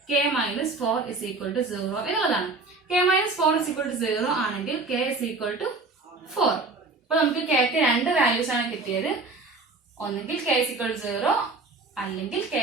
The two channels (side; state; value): left; quieter; 3.6 dB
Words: k minus 4 is equal to 0 എന്നുള്ളതാണ്. k minus 4 is equal to 0 ആണെങ്കിൽ k ഇസ് ഈക്വൽ ടു 4. അപ്പൊ നമുക്ക് k ക്ക് രണ്ട് വാല്യൂസ് ആണ് കിട്ടിയത്. ഒന്നെങ്കിൽ k ഇസ് ഈക്വൽ ടു 0 അല്ലെങ്കിൽ k